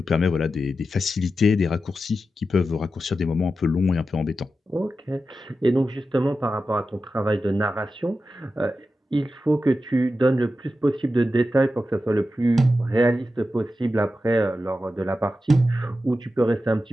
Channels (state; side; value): normal; both; correlation 0.91